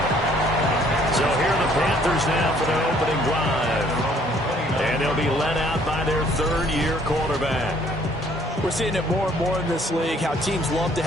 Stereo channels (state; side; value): normal; both; correlation 0.61